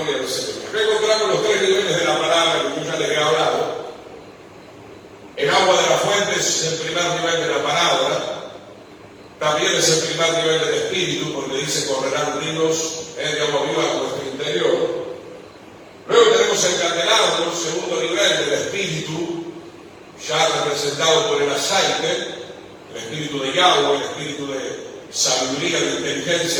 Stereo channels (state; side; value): identical; both; correlation 1.00